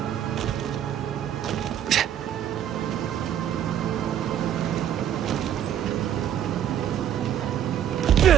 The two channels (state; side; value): quieter; left; 10.1 dB